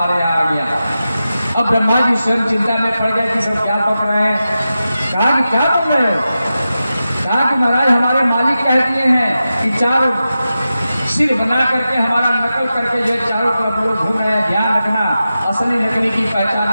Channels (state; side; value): inverted; both; correlation -0.92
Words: यहाँ आ गया। अब ब्रह्मा जी स्वयं चिंता में पड़ गए कि सब क्या पक रहे हैं। कहा कि क्या पक रहे हो? कहा कि महाराज हमारे मालिक कह दिए हैं कि 4 सिर बना करके हमारा नकल करके जो चारों तरफ लोग घूम रहे हैं, ध्यान रखना, असली नकली की